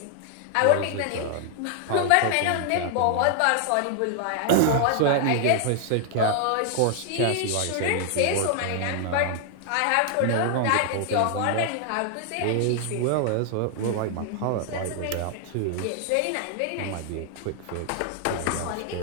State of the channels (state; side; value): different; both; correlation 0.00